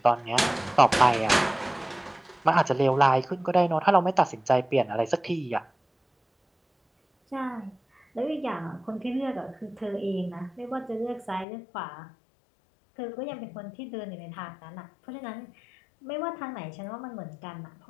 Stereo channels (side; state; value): right; drops out; at 11.5 s